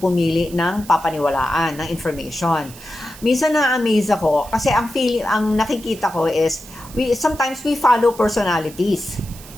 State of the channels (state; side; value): noise; right; hiss, 18 dB below the sound